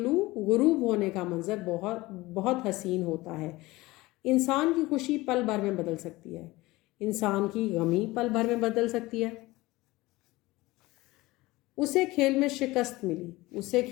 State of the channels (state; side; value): quieter; right; 20.0 dB